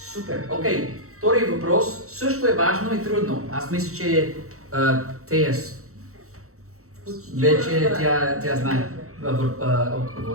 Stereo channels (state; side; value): late; left; 0.64 ms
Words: Супер. Окей. Втори въпрос също е важно и трудно. Аз мисля, че Теяс вече тя знае